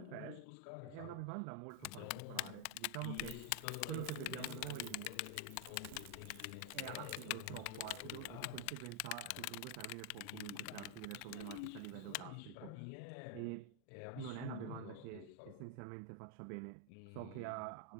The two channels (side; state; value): both; different; correlation 0.00